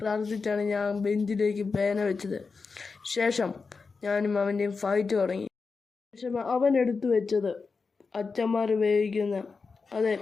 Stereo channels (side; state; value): right; quieter; 4.7 dB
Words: ഞാൻ ബെഞ്ചിലേക്ക് പേന വെച്ചത്. ശേഷം ഞാനും അവൻ്റെയും ഫൈറ്റ് തുടങ്ങി. ശേഷം അവൻ എടുത്തു വെച്ചത് അച്ഛന്മാർ ഉപയോഗിക്കുന്ന